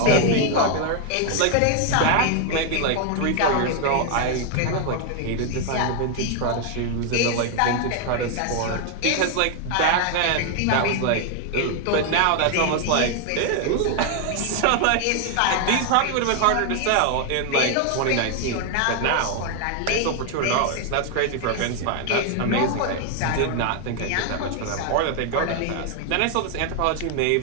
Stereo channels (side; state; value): both; different; correlation 0.00